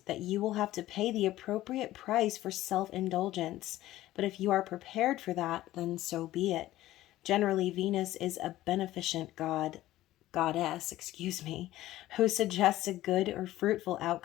that you will have to pay the appropriate price for self-indulgence, but if you are prepared for that, then so be it. Generally, Venus is a beneficent goddess, who suggests a good or fruitful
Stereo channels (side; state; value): right; quieter; 15.3 dB